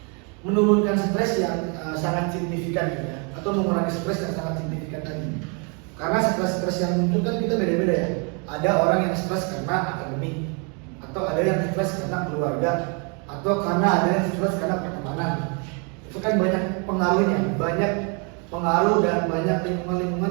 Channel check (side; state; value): left; quieter; 35.3 dB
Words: Menurunkan stres yang sangat signifikan gitu ya, atau mengurangi stres yang sangat signifikan tadi. Karena stres-stres yang muncul kan kita beda-beda ya. Ada orang yang stres karena akademik, atau ada yang stres karena keluarga, atau karena ada yang stres karena pertemanan. Itu kan banyak pengaruhnya, banyak pengaruh dan banyak